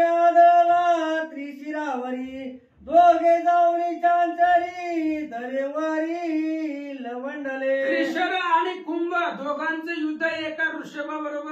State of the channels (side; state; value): both; identical; correlation 1.00